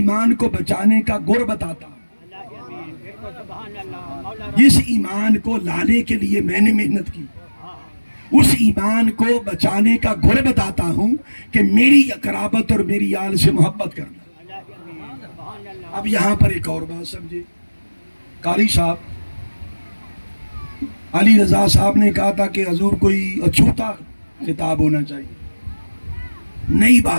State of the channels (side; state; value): both; inverted; correlation -1.00